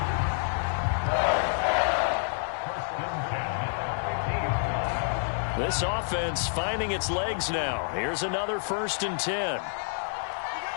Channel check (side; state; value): right; silent; digital silence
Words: This offense finding its legs now. Here's another 1st and 10.